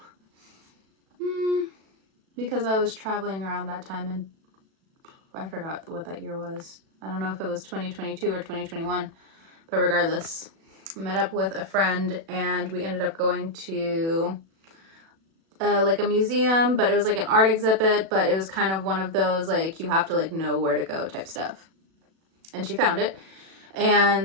because I was traveling around that time, and I forgot what that year was. I don't know if it was 2022 or 2021, but regardless, I met up with a friend, and we ended up going to like a museum, but it was like an art exhibit, but it was kind of one of those, like, you have to like know where to go type stuff. And she found it,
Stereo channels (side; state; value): left; late; 36 ms